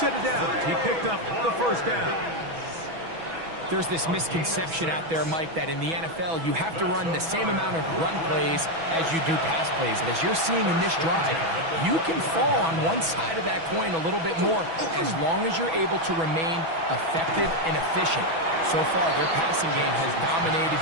of downs. He picked up the 1st down. There's this misconception out there, Mike, that in the NFL, you have to run the same amount of run plays as you do pass plays. And as you're seeing in this drive, you can fall on one side of that coin a little bit more as long as you're able to remain effective and efficient. So far, their passing game has dominated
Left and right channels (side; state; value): left; late; 6.1 ms